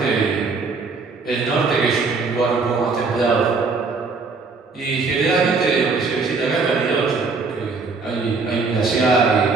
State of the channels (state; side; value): quieter; left; 4.3 dB